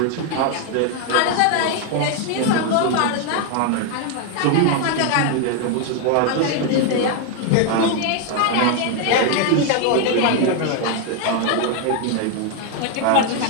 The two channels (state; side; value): different; both; correlation 0.01